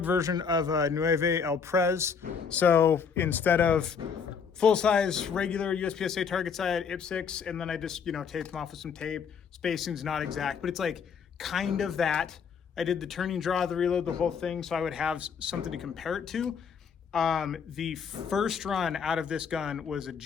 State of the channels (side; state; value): right; quieter; 6.4 dB